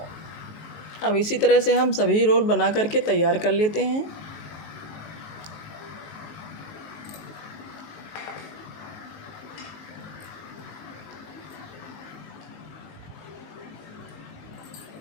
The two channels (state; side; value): late; right; 19 ms